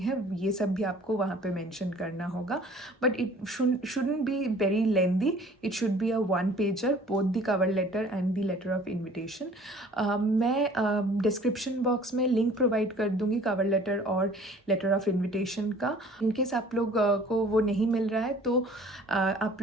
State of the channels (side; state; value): both; normal; correlation 0.51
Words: ये सब भी आपको वहाँ पे मेंशन करना होगा, but it shouldn't be very lengthy. It should be a one pager, both the cover letter and the letter of invitation. मैं डिस्क्रिप्शन बॉक्स में लिंक प्रोवाइड कर दूंगी कवर लेटर और लेटर ऑफ इनविटेशन का। In case आप लोग को वो नहीं मिल रहा है तो आप